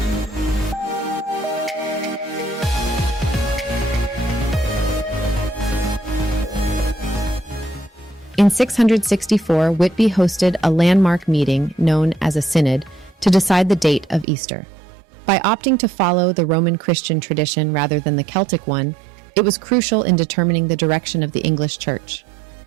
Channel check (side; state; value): left; drops out; at 14.2 s